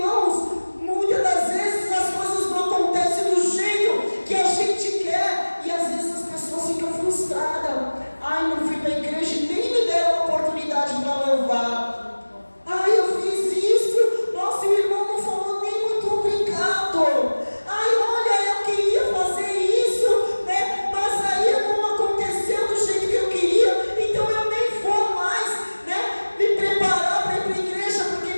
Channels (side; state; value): both; inverted; correlation -1.00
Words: muitas das vezes as coisas não acontecem do jeito que a gente quer, e às vezes as pessoas ficam frustradas. Ai, não fui para a igreja e nem me deram a oportunidade para louvar. Ai, eu fiz isso, nossa, o irmão não falou nem muito obrigado. Ai, olha, eu queria fazer isso, né? Mas aí não aconteceu do jeito que eu queria, então eu nem vou mais, né? Me preparar para ir para a igreja, porque